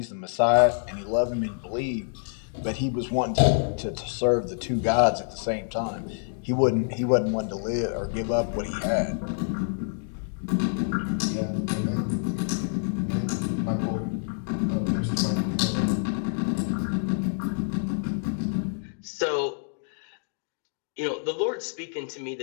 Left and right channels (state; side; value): silent; right; digital silence